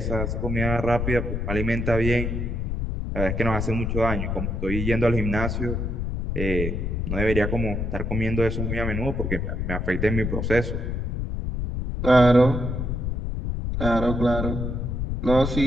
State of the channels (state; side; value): noise; left; rumble, 2 dB below the sound